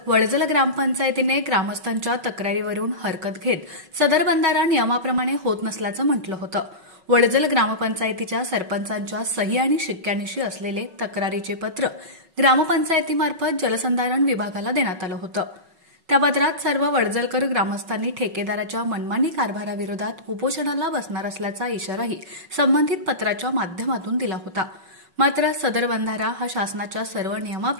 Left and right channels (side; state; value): left; late; 5.3 ms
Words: वडजल ग्रामपंचायतीने ग्रामस्थांच्या तक्रारीवरून हरकत घेत सदर बंधारा नियमाप्रमाणे होत नसल्याचं म्हटलं होतं। वडजल ग्रामपंचायतीच्या सरपंचांच्या सही आणि शिक्क्यानिशी असलेले तक्रारीचे पत्र ग्रामपंचायतीमार्फत जलसंधारण विभागाला देण्यात आलं होतं। त्या पत्रात सर्व वडजलकर ग्रामस्थांनी ठेकेदाराच्या मनमानी कारभाराविरोधात उपोषणाला बसणार असल्याचा इशाराही संबंधित पत्राच्या माध्यमातून दिला होता। मात्र सदर बंधारा हा शासनाच्या सर्व